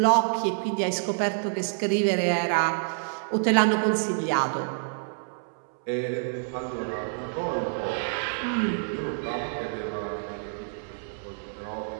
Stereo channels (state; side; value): silent; left; 60 dB below the other